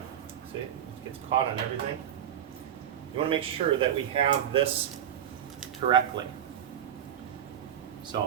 see, it gets caught on everything. You want to make sure that we have this correctly.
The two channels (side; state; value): left; quieter; 9.9 dB